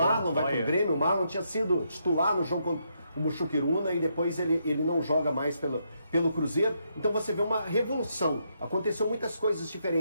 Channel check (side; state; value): both; inverted; correlation -0.78